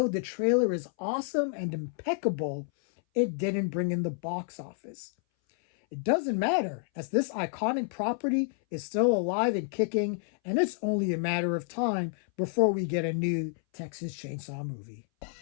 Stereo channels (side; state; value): right; silent; 58 dB below the other